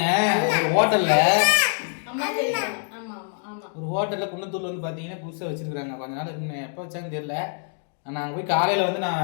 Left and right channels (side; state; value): right; silent; 62 dB below the other